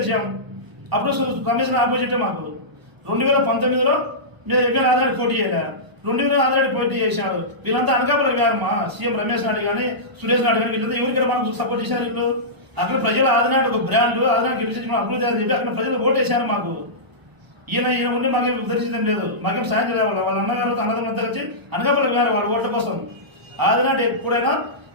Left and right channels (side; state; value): left; late; 1.0 ms